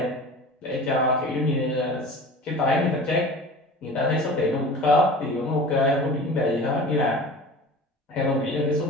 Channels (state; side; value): normal; both; correlation 0.38